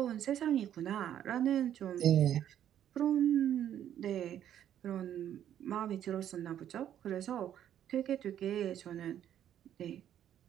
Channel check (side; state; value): left; quieter; 10.5 dB